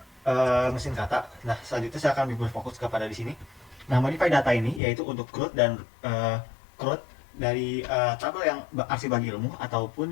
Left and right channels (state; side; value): drops out; right; at 4.8 s